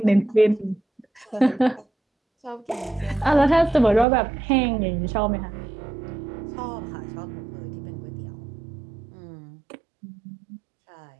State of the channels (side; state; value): left; drops out; at 4.0 s